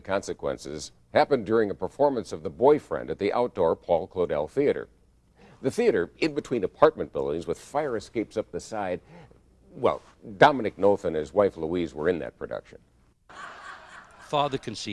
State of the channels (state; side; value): identical; both; correlation 1.00